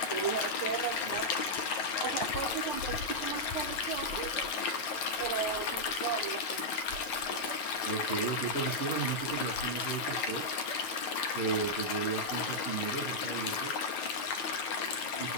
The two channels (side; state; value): right; late; 9.2 ms